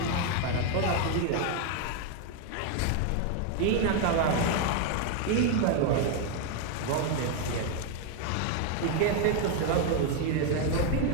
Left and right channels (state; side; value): different; both; correlation 0.01